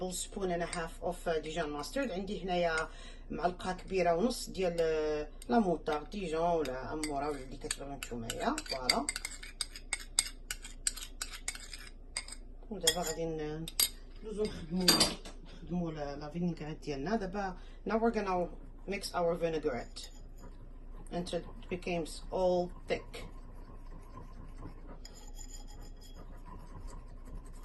and a half of Dijon mustard. عندي هنايا معلقه كبيره ونص ديال لا موطار ديجون ولا اموره ولا اللي كتبغيو نتومايا. فوالا. ودابا غادي ندوزو نخدمو لا فينيغريت ديالنا. دابا now we're gonna mix our vinaigrette until it becomes all thick.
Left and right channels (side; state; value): both; identical; correlation 1.00